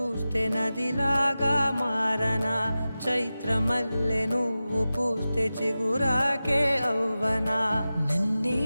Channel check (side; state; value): both; inverted; correlation -0.95